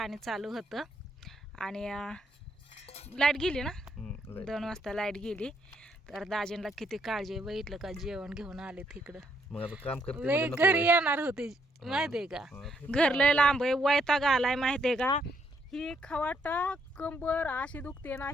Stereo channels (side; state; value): both; normal; correlation 0.73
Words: चालू होतं. आणि लाईट गेली ना, 2 वाजता लाईट गेली. तर दाजींना किती काळजी आहे, बघितलं का? जेवण घेऊन आले तिकडं. घरी येणार होते माहितीये का? घर लय लांब आहे, वैताग आलाय माहितीये का? ही खवाटा कंबर अशी दुखते ना,